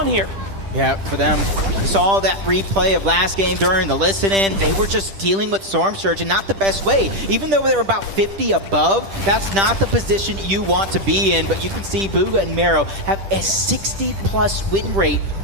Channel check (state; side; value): late; left; 10 ms